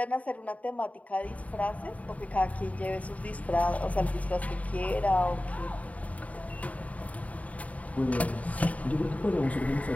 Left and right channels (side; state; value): right; late; 0.069 ms